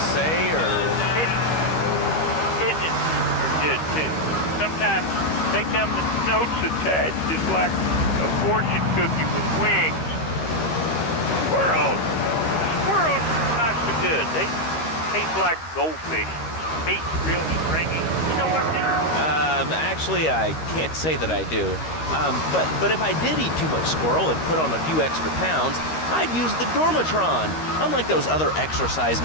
or? Pigeons are good, too. Sometimes they come with notes attached, just like a fortune cookie with wings. Squirrels not so good. They taste like goldfish. Meat's real stringy. You know what I mean? Actually, I can't say that I do. But if I did eat too much squirrel and put on a few extra pounds, I'd use the Dormatron. Unlike those other exercise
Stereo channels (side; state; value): right; late; 13 ms